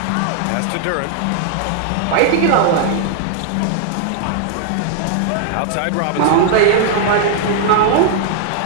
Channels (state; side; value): different; both; correlation -0.01